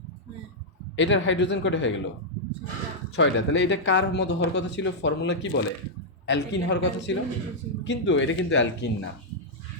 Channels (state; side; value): normal; both; correlation -0.06